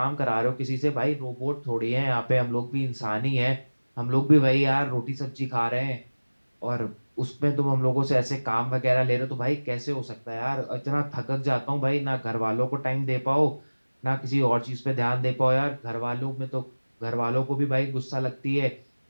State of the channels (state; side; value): inverted; both; correlation -1.00